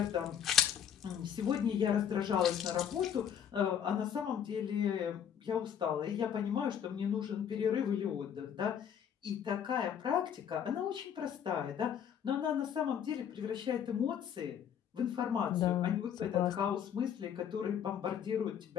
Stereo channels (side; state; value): right; quieter; 8.8 dB